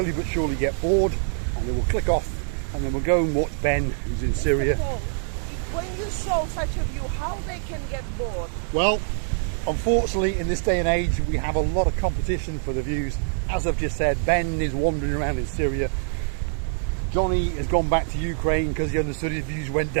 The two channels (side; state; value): left; silent; 62 dB below the other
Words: but surely get bored, and they will click off, and then we'll go and watch Ben, who's in Syria. When you show such a view, how they can get bored? Well, unfortunately, in this day and age, we have a lot of competition for the views. As I've just said, Ben is wandering around in Syria. Johnny has gone back to Ukraine because he understood his views went